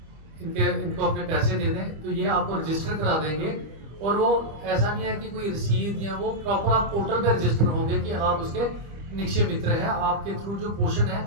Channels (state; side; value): late; left; 25 ms